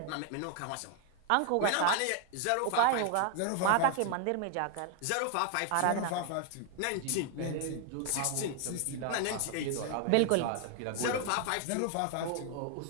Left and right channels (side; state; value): both; different; correlation 0.00